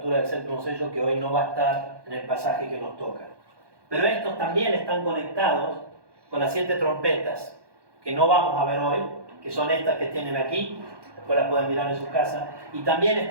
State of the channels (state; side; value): late; left; 1.2 ms